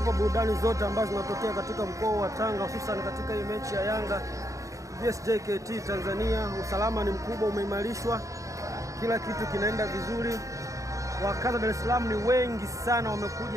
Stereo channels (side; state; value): left; late; 0.16 ms